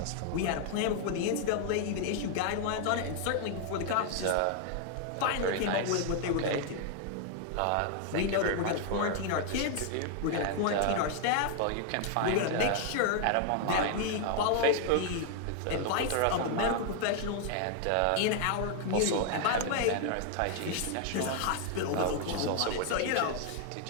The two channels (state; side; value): different; both; correlation 0.00